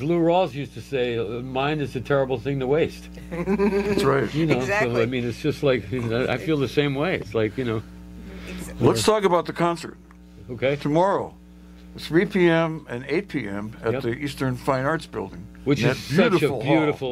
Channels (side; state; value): both; identical; correlation 1.00